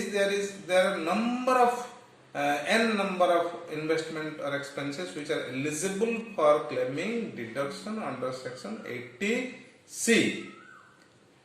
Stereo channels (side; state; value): both; identical; correlation 1.00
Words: there are number of n number of investment or expenses which are eligible for claiming deduction under section 80C.